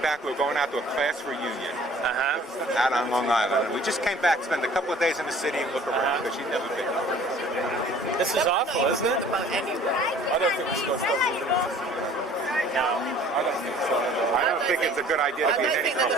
We were going out to a class reunion Uh-huh. out on Long Island. And we just came back, spent a couple of days in the city and look around because she'd never been. This is awful, isn't it? About anywhere. I don't think we should go stop moving. No. I don't think so. I don't think it's a good idea I to be in don't any think they're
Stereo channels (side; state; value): both; normal; correlation 0.51